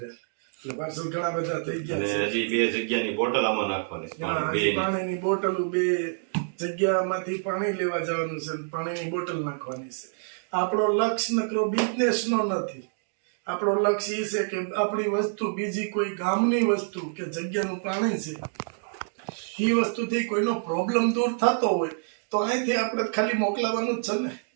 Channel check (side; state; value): left; silent; digital silence